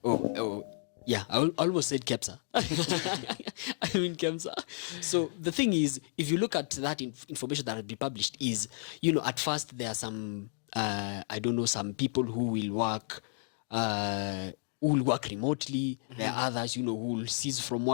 Yeah, I almost said KEMSA. I mean KEMSA. So the thing is, if you look at that information that has been published, is, you know, at first there are some, I don't know, some people who will work remotely. Mm-hmm. There are others, you know, who will cease from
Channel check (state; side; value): silent; right; digital silence